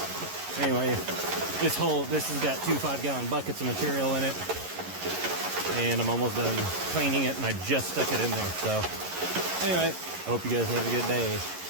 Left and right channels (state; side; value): late; left; 11 ms